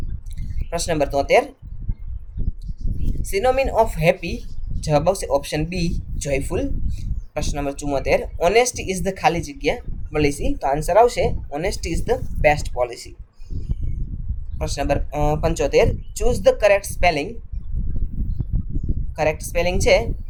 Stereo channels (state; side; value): identical; both; correlation 1.00